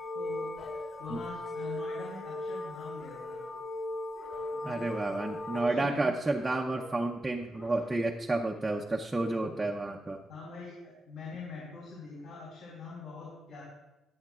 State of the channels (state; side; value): normal; both; correlation 0.88